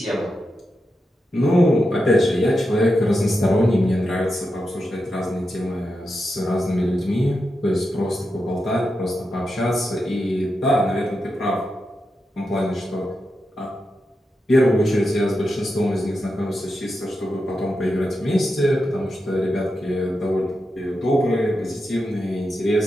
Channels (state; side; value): normal; both; correlation 0.88